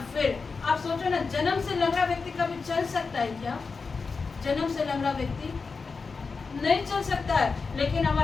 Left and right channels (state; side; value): quieter; right; 4.6 dB